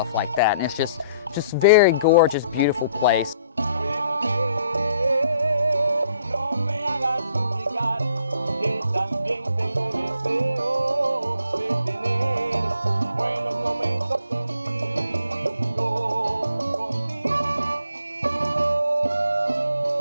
like that. And it's just very gorgeous, beautiful place.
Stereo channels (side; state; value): both; inverted; correlation -0.66